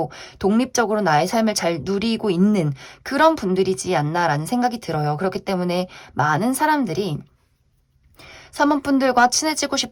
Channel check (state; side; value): identical; both; correlation 1.00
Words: 독립적으로 나의 삶을 잘 누리고 있는 그런 분들이지 않나라는 생각이 들어요. 그렇기 때문에 많은 사람들이 3번 분들과 친해지고